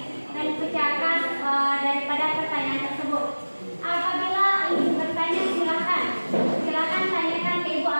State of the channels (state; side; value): inverted; both; correlation -1.00